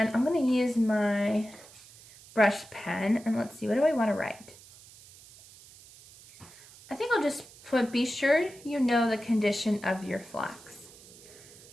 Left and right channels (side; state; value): right; noise; hiss, 21 dB below the sound